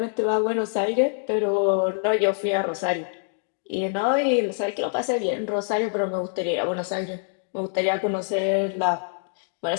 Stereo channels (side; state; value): right; silent; digital silence